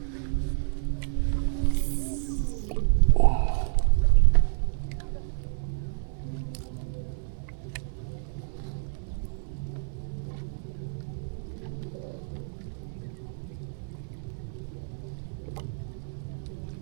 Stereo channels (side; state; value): left; silent; 59 dB below the other